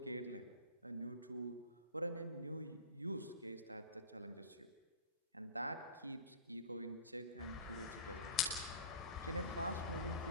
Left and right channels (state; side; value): inverted; both; correlation -0.37